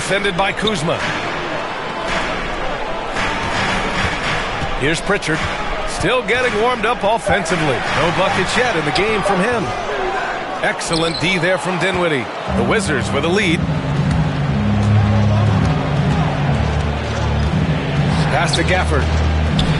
by Kuzma. Here's Pritchard. Still getting warmed up offensively. No buckets yet in the game from him. Excellent D there from Dinwiddie. The Wizards with a lead. Pass to Gafford.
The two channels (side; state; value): both; identical; correlation 1.00